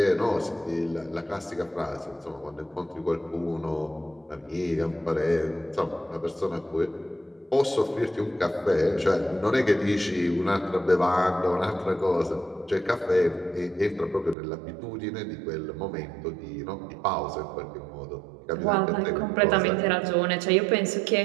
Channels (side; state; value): left; drops out; at 14.4 s